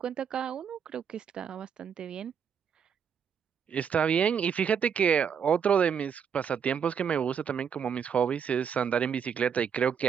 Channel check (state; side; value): quieter; left; 7.4 dB